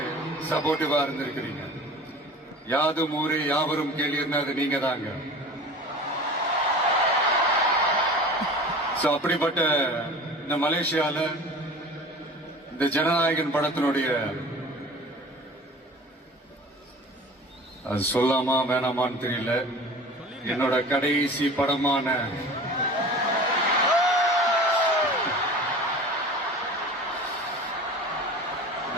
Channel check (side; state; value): both; normal; correlation 0.39